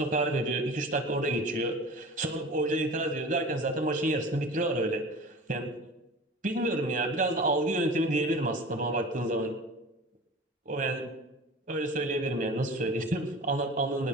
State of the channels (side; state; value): both; normal; correlation 0.38